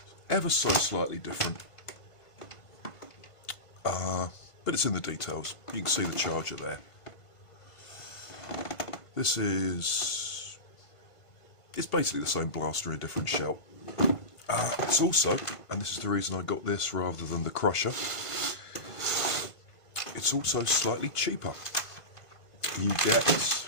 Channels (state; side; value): late; right; 1.5 ms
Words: Ever so slightly different. But it's in the details. You can see the charger there. This is... it's basically the same blaster in a different shell. It's also, and this is the reason I got this rather than the crusher, it's also slightly cheaper. You get